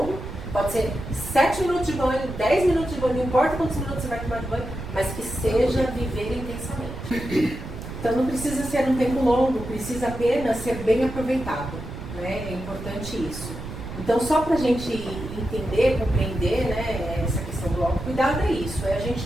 pode ser 7 minutos de banho, 10 minutos de banho, não importa quantos minutos você vai tomar de banho, mas que seja viver intensamente. Então não precisa ser um tempo longo, precisa apenas ser bem aproveitado, né? É importante isso. Então, só para a gente entender, compreender, né, essa questão do autocuidado é isso, é a gente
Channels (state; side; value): noise; right; rumble, 10 dB below the sound